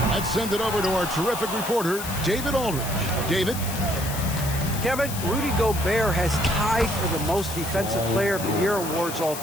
let's send it over to our terrific reporter, David Aldridge. David? Kevin, Rudy Gobert has tied for the most Defensive Player of the Year awards all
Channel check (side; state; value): left; noise; hiss, 8 dB below the sound